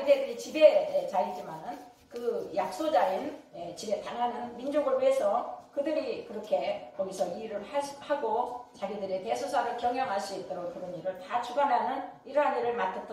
지배자이지만은 그 약소자인 집에 당하는 민족을 위해서 그들이 그렇게 거기서 일을 하고 자기들의 대소사를 경영할 수 있도록 그런 일을 다 주관하는 이러한 일을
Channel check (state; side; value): identical; both; correlation 1.00